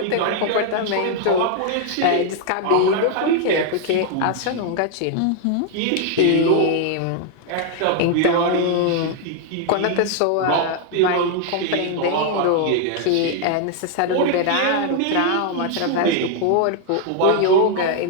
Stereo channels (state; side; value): different; both; correlation 0.00